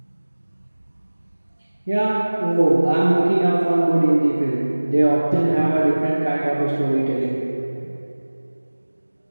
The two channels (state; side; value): inverted; both; correlation -1.00